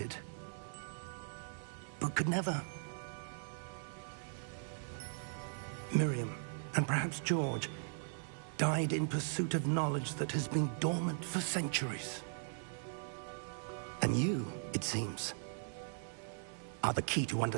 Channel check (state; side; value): silent; left; 52 dB below the other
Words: but could never. Miriam, and perhaps George, died in pursuit of knowledge that has been dormant for centuries. And you, it seems, are the key to